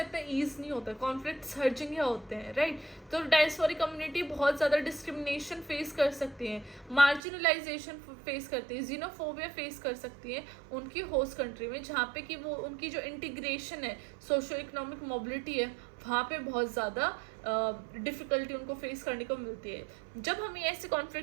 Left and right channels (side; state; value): left; drops out; at 7.2 s